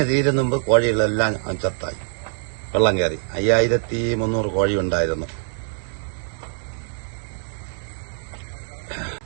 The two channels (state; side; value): silent; left; 60 dB below the other